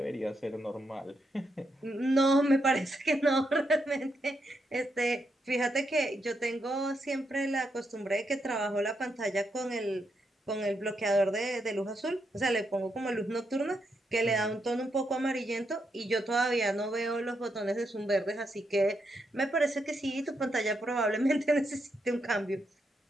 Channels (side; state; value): both; normal; correlation 0.81